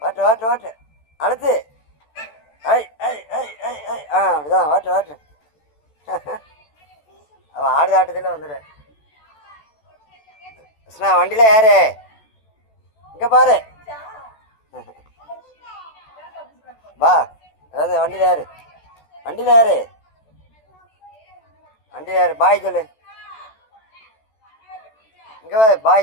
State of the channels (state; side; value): late; right; 14 ms